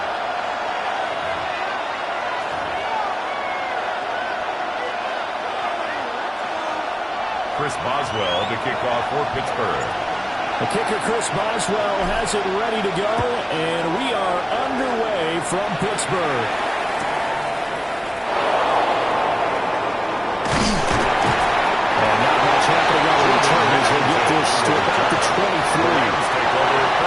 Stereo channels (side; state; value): both; identical; correlation 1.00